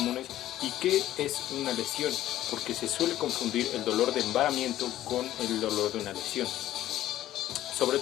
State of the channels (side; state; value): right; quieter; 13.5 dB